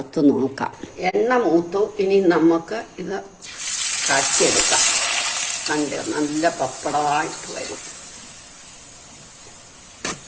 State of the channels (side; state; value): both; identical; correlation 1.00